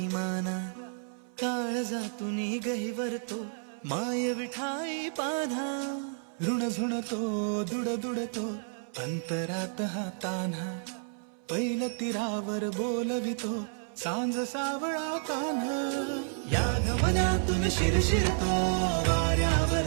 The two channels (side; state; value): left; silent; 57 dB below the other